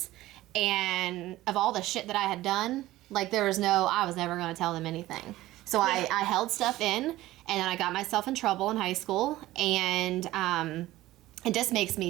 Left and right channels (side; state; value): left; quieter; 16.4 dB